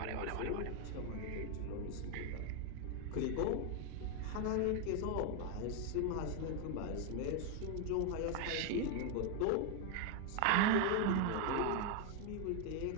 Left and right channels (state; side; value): different; both; correlation 0.01